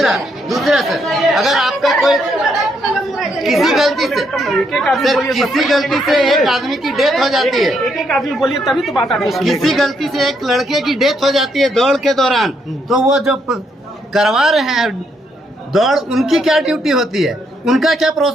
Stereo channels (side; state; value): both; normal; correlation 0.75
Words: सर, अगर आपका कोई किसी गलती से एक आदमी की डेथ हो जाती है, एक आदमी बोलिए तभी तो बात आती है। किसी गलती से एक लड़के की डेथ हो जाती है दौड़ के दौरान, तो वो जो करवा रहे हैं दौड़, उनकी क्या ड्यूटी होती है, उनका क्या